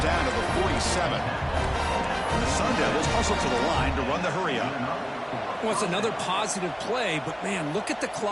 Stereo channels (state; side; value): identical; both; correlation 1.00